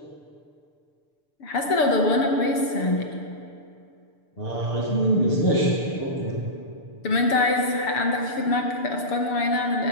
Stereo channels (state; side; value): late; right; 6.8 ms